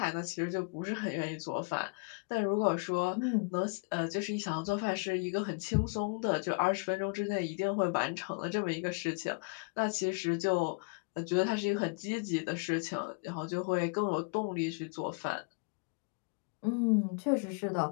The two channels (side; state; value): right; quieter; 32.8 dB